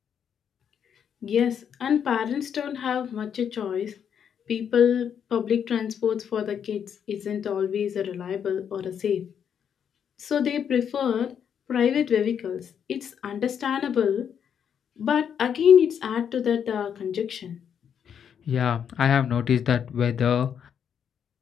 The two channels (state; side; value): quieter; right; 8.1 dB